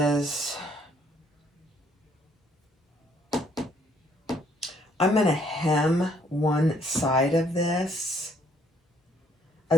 I'm going to hem one side of this,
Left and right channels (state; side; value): normal; both; correlation 0.66